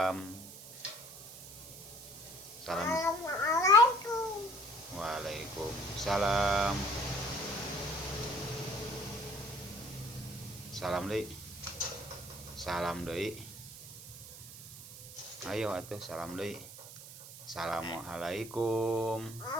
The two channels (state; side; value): noise; right; hiss, 14 dB below the sound